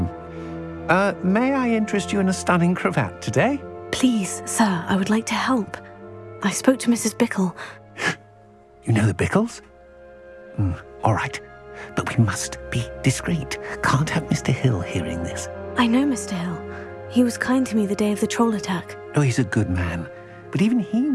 May I interest you in a stunning cravat today? Please, sir, I would like to help. I spoke to Mrs. Bickle. You know the Bickles? All right. But we must be discreet. Can't have Mr. Hill hearing this. I know Mr. Hill. He was kind to me the day of the troll attack. Oh, he's a good man. But even he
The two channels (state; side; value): identical; both; correlation 1.00